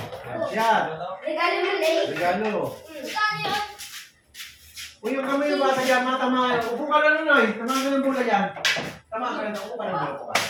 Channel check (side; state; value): both; identical; correlation 1.00